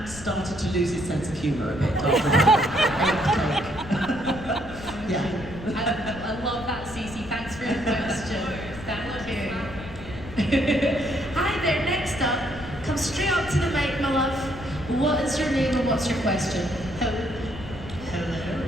started to lose his sense of humour a bit after that. Yeah. I love that, Cece. Thanks for your question. Thank you. Hi there. Next up, come straight up to the mic, my love. What is your name and what's your question? Hello.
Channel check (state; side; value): noise; left; rumble, 14 dB below the sound